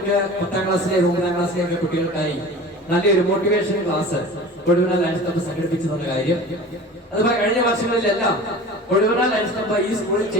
10ാം ക്ലാസ്സിലെ 9ാം ക്ലാസ്സിലെ ഒക്കെ കുട്ടികൾക്കായി നല്ലൊരു മോട്ടിവേഷൻ ക്ലാസ് കൊഴുവന ലയൺസ് ക്ലബ്ബ് സംഘടിപ്പിച്ചെന്ന കാര്യം. അതുപോലെ കഴിഞ്ഞ വർഷങ്ങളിലെല്ലാം കൊഴുവന ലയൺസ് ക്ലബ്ബ് ഈ സ്കൂളിൽ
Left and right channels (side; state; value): both; normal; correlation 0.38